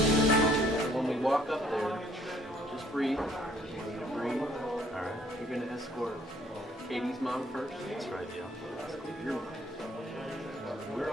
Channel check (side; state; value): both; normal; correlation 0.62